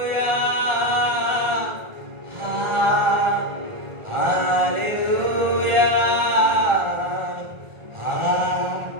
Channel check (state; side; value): late; left; 1.4 ms